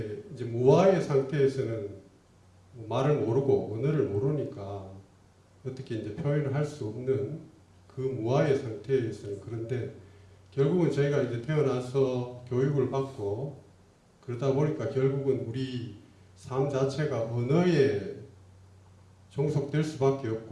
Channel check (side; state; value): both; identical; correlation 1.00